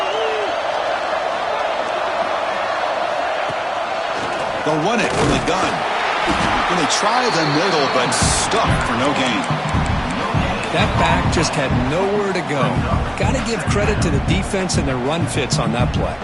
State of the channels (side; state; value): both; identical; correlation 1.00